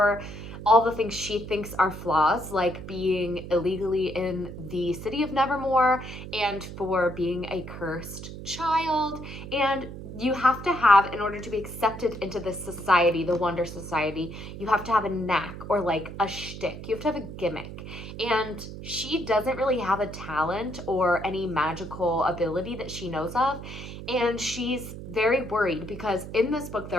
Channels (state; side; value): noise; right; hum, 11 dB below the sound